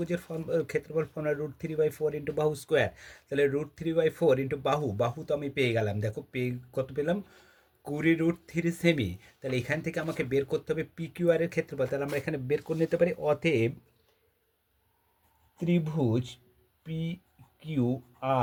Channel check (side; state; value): both; identical; correlation 1.00